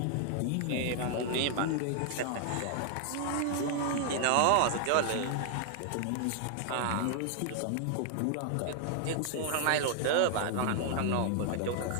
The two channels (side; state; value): both; different; correlation 0.00